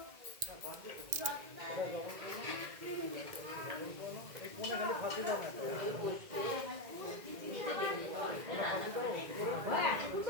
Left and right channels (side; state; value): left; late; 2.0 ms